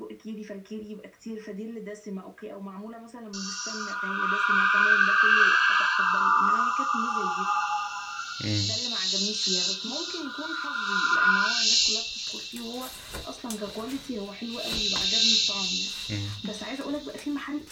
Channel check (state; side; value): identical; both; correlation 1.00